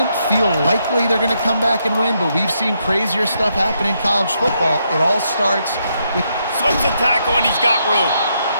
feel likely they're going to come back and win, but we've seen crazier stuff happen in college football. It all starts with... Slips a tackle, and he's got room.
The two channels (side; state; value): both; inverted; correlation -0.78